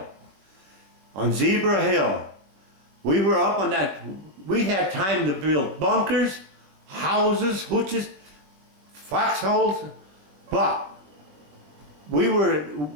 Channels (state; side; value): late; left; 21 ms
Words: On Zebra Hill. We were up on that. We had time to build bunkers, houses, hooches, foxholes, but we